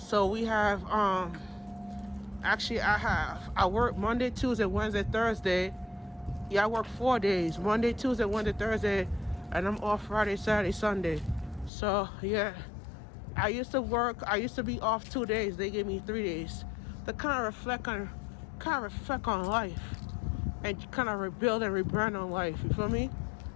we have I work Monday, Tuesday, Wednesday, Thursday. Yeah, I work 4 days. Monday, Tuesday, Wednesday, Thursday, and I'm off Friday, Saturday, Sunday. So yeah, I used to be off 2 days. They gave me 3 days to kind of reflect on life and kind of rebuild and rebrand on life. You feel me?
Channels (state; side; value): drops out; right; at 11.7 s